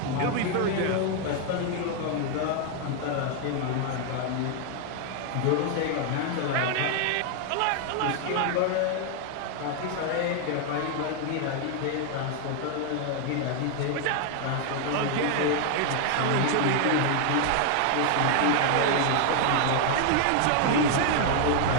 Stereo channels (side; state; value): both; different; correlation 0.00